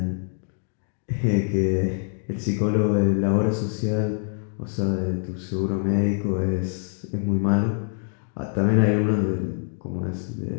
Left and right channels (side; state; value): right; silent; 60 dB below the other